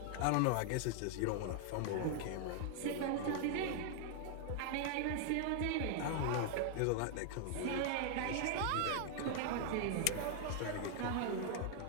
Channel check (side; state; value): both; different; correlation 0.00